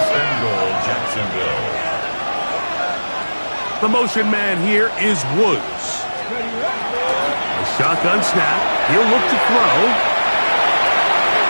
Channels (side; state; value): both; inverted; correlation -1.00